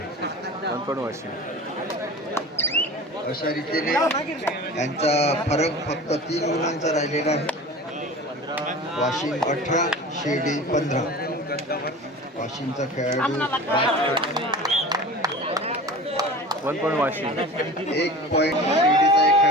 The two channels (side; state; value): both; normal; correlation 0.37